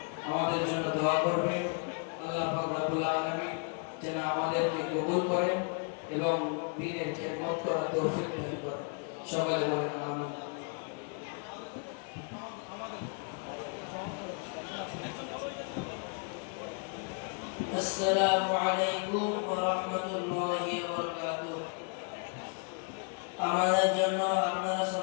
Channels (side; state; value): right; quieter; 39.2 dB